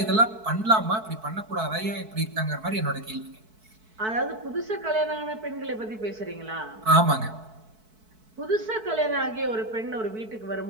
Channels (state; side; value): late; left; 4.6 ms